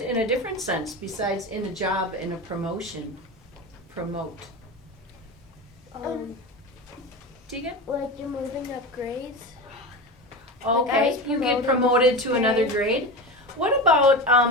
in a different sense besides in a job and a promotion? Promote. Tegan? Like you're moving up grades. Okay, you get promoted to another grade. What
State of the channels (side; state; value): both; normal; correlation 0.25